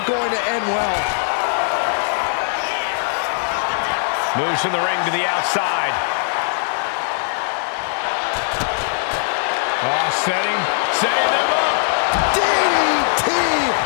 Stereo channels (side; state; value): right; silent; digital silence